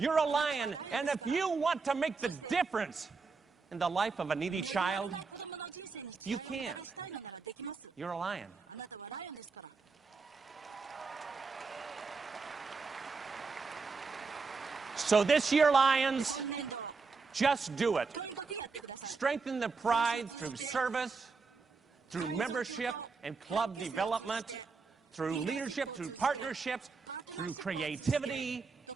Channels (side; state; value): left; quieter; 4.6 dB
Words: a lion. And if you want to make the difference in the life of a needy child, you can. You're a lion. So this year, Lions, just do it. Strengthen the pride through service, through membership and club development, through leadership, through partnerships, through creativity,